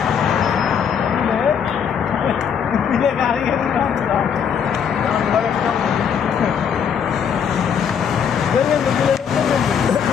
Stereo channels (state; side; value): quieter; right; 7.5 dB